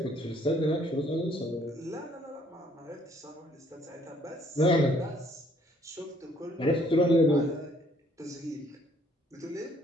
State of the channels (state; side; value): normal; both; correlation 0.63